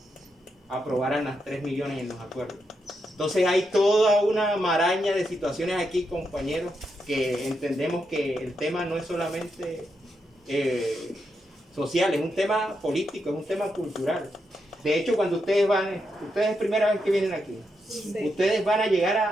aprobaran las 3 millones en los acuerdos. Entonces hay toda una maraña de situaciones aquí, compañeros, que entendemos que el tema no es solamente social, es un tema político, es un tema cultural. De hecho, cuando ustedes es primera vez que vienen aquí, ustedes van a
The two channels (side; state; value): both; normal; correlation 0.83